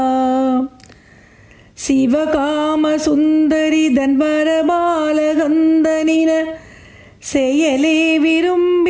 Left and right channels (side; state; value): both; identical; correlation 1.00